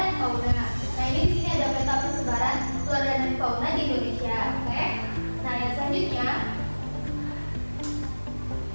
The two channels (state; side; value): inverted; both; correlation -1.00